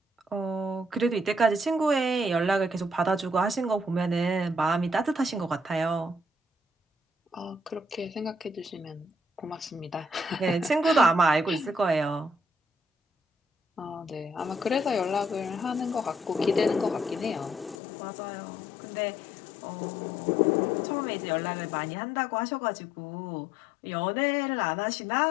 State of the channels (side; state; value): right; drops out; at 17.8 s